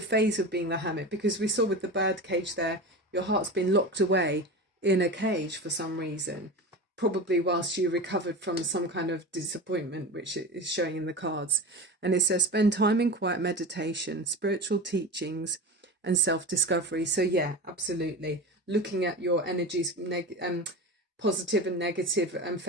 phase of being the Hermit, because we saw with the bird cage there, your heart's been locked away in a cage for some reason, probably whilst you recovered from some kind of disappointment, which is showing in the cards. And it says spend time in quiet meditation, spiritual teachings and self-discovery. So yeah, absolutely, looking at your energies, positive and negative, and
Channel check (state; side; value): normal; both; correlation 0.28